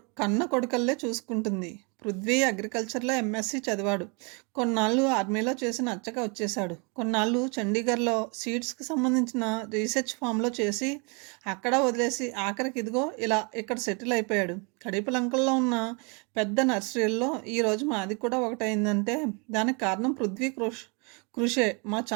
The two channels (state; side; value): quieter; left; 32.9 dB